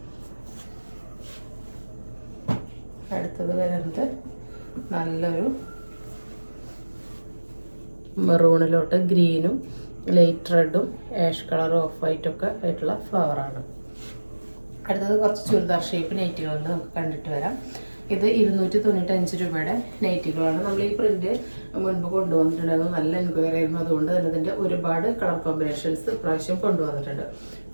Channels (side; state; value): both; inverted; correlation -1.00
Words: അടുത്തത് വരുന്നത് നല്ലൊരു മെറൂണിലോട്ട് ഗ്രീനും ലൈറ്റ് റെഡും ആഷ് കളർ ഓഫ് വൈറ്റൊക്കെ ആയിട്ടുള്ള ഫ്ലവറാണ്. അടുത്തത് കുറച്ച് ചുരിദാർ ഷേപ്പ് നൈറ്റികളുണ്ട്, നമുക്ക് കണ്ടിട്ട് വരാം. ഇത് 295 രൂപയുടെ നൈറ്റികളാണ്. നമ്മൾ ഈ പ്രിന്റ് മുൻപ് കൊണ്ടുവന്നിട്ടുണ്ടായിരുന്നു, നല്ല എൻക്വയറി ആയിരുന്നു. അതുകൊണ്ട് തന്നെ ഇതിൻ്റെ ഒരുപാട് കളർ കോമ്പിനേഷൻസ് ഇപ്രാവശ്യം കൊണ്ടുവന്നിട്ടുണ്ട്.